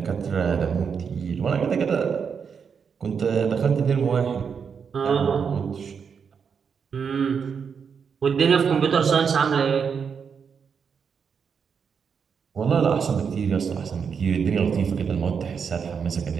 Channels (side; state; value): left; quieter; 6.5 dB